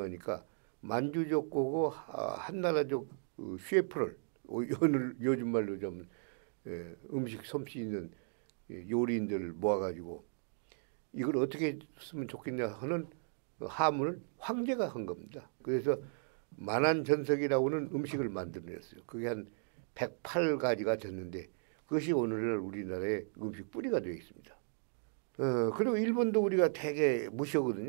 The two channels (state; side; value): silent; left; digital silence